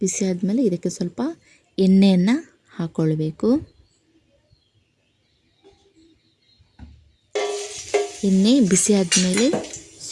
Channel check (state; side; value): identical; both; correlation 1.00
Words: ಬಿಸಿ ಆದಮೇಲೆ ಇದಕ್ಕೆ ಸ್ವಲ್ಪ ಎಣ್ಣೆಯನ್ನು ಹಾಕ್ಕೊಳ್ಬೇಕು. ಎಣ್ಣೆ ಬಿಸಿ ಆದಮೇಲೆ